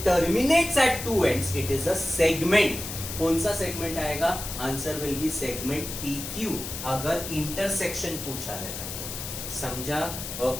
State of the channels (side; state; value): left; noise; hiss, 7 dB below the sound